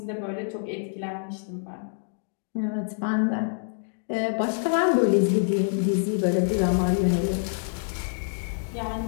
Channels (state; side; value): silent; right; digital silence